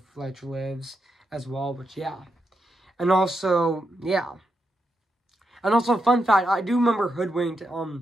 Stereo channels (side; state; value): both; normal; correlation 0.84